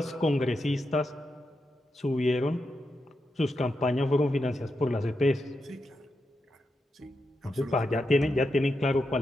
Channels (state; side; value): normal; both; correlation 0.86